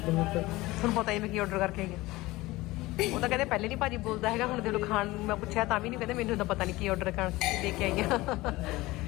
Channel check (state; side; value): quieter; right; 19.6 dB